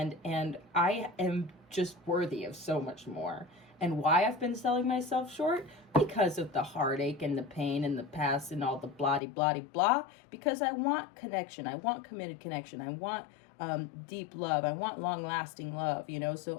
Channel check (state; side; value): drops out; right; at 9.2 s